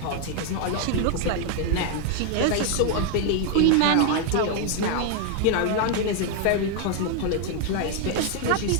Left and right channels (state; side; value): different; both; correlation 0.00